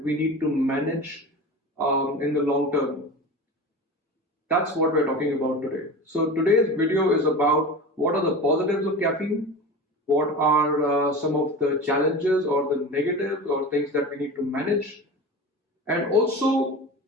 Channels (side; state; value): both; normal; correlation 0.31